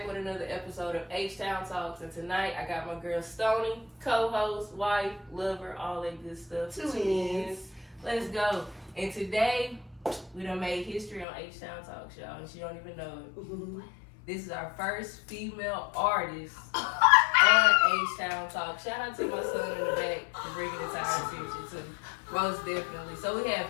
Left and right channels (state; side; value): drops out; right; at 11.2 s